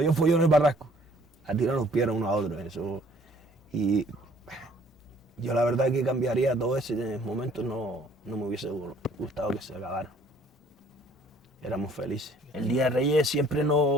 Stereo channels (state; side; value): normal; both; correlation 0.58